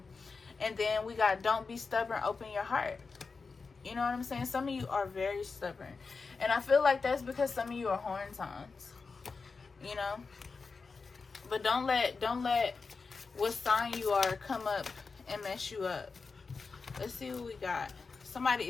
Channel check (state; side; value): quieter; right; 4.6 dB